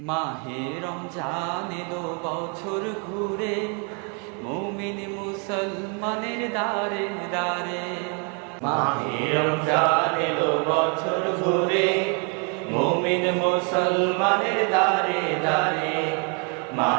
রমজান এলো বছর ঘুরে, মুমিন মুসলমানের দারে দারে। মাহে রমজান এলো বছর ঘুরে, মুমিন মুসলমানের দারে দারে।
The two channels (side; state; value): left; quieter; 37.2 dB